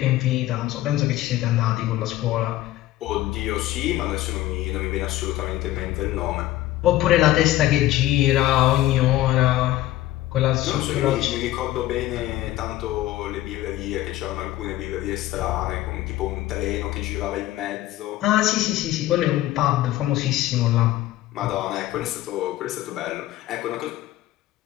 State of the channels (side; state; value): right; quieter; 15.2 dB